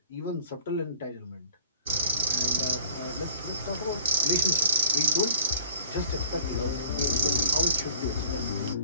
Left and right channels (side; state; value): both; inverted; correlation -0.50